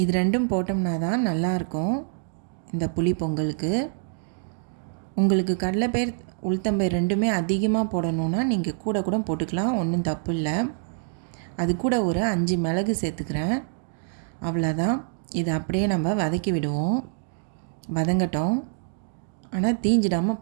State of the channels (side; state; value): left; silent; 61 dB below the other